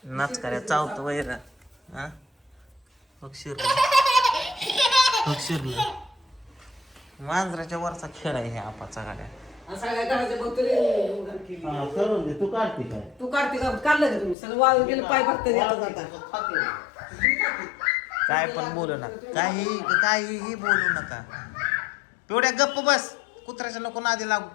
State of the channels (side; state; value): right; drops out; at 14.4 s